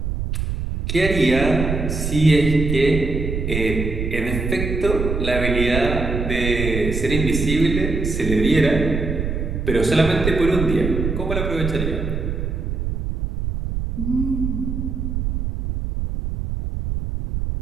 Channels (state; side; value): noise; right; rumble, 3 dB below the sound